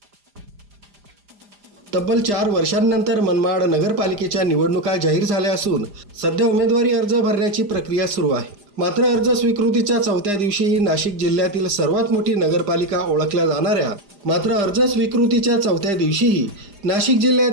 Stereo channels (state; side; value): late; left; 4.9 ms